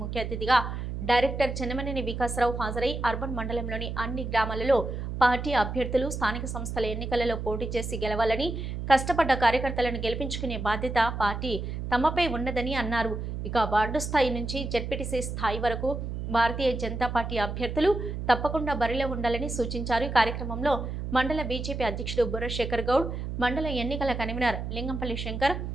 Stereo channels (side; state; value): right; noise; hum, 5 dB below the sound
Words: ముఖ్య అతిథిగా డైరెక్టర్ చెన్నమనేని వికాసరావు హాజరై అర్బన్ మండలంలోని అన్ని గ్రామాలలో పార్టీ అభ్యర్థులు స్థానిక సంస్థల ఎన్నికలలో పోటీ చేసి గెలవాలని, కష్టపడ్డ కార్యకర్తలను గెలిపించుకునే బాధ్యత పార్టీ తమపై ఉన్నదని అన్నారు। ఇక వార్డు స్థాయి నుంచి జెడ్పీటీసీ స్థాయి వరకు భారతీయ జనతా పార్టీ అభ్యర్థులు తప్పకుండా బరిలో ఉండాలని సూచించారు। ఈ కార్యక్రమంలో మండల బీజేపీ అధ్యక్షుడు బుర్ర శేఖర్ గౌడ్, మండల ఎన్నికల కన్వీనర్ లింగంపల్లి శంకర్,